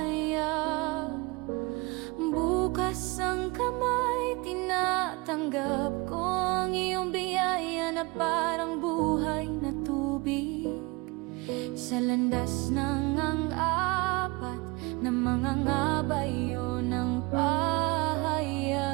bukas ang kamay, tinatanggap ko ang iyong biyaya na parang buhay na tubig. Sa landas ng ang-apat na mga ngabayon ng pahayag,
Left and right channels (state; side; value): quieter; left; 25.5 dB